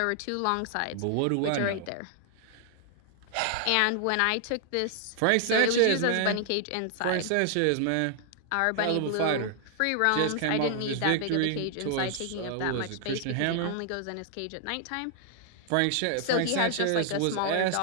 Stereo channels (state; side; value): different; both; correlation 0.00